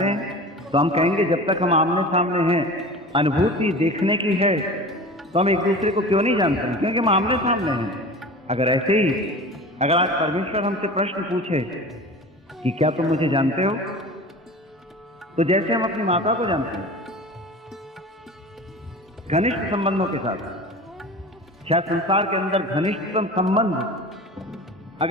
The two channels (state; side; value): normal; both; correlation 0.36